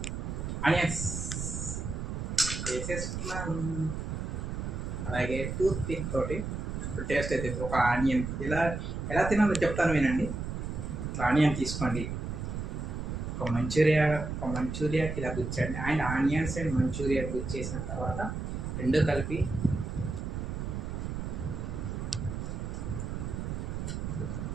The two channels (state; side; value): noise; right; rumble, 4 dB below the sound